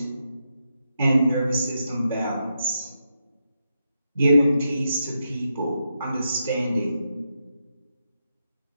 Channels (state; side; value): inverted; both; correlation -0.84